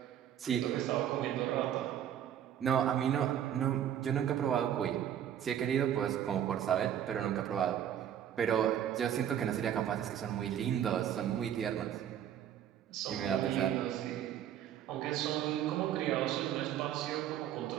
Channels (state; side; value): quieter; left; 10.2 dB